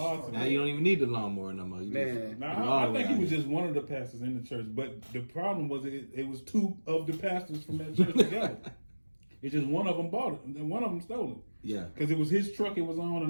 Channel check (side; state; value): both; inverted; correlation -1.00